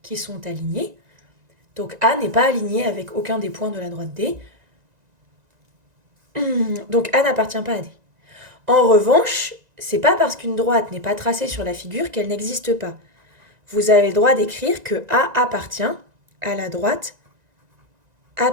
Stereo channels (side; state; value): left; late; 1.9 ms